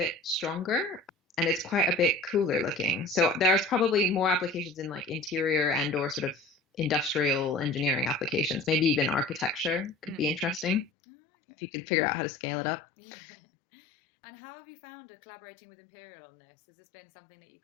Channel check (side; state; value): right; drops out; at 10.9 s